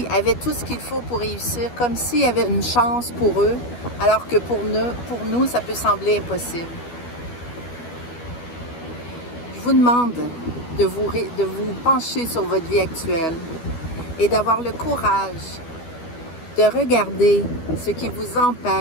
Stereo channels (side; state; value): right; late; 12 ms